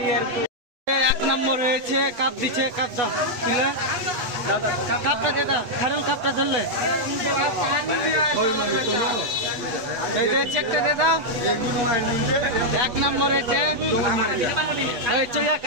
এক নম্বর হয়েছে, কাপ দিচ্ছে, কাপ দাও তুলে, কাপটা দে দাও, খারুল কাপটা ধরলে চেকটা দে দাও। এক নম্বর হয়েছে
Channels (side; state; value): left; late; 8.2 ms